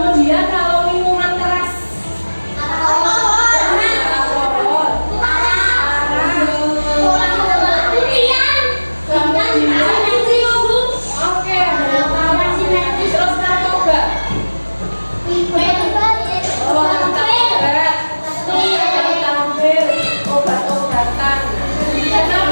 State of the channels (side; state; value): both; inverted; correlation -1.00